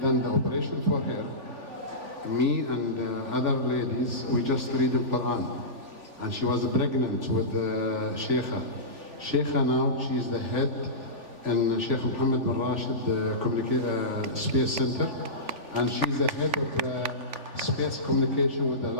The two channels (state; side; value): late; left; 3.4 ms